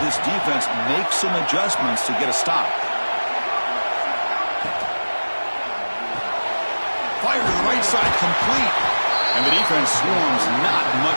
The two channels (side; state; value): both; inverted; correlation -1.00